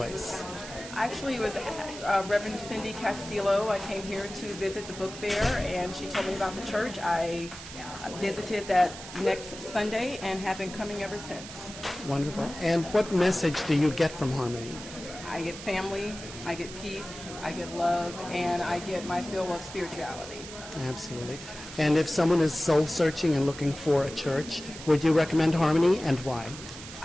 Actually, it was Reverend Cindy Castillo. I came here to visit the book fair, and she told me about the church. I visited that next Sunday and have been coming ever since. Wonderful. And what message do you get from Harmony? I get family, I get peace, I get love, and I get my fill of spirituality. Absolutely. And if someone is soul searching and looking for a church, would you recommend Harmony, and why?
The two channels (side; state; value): right; noise; hiss, 13 dB below the sound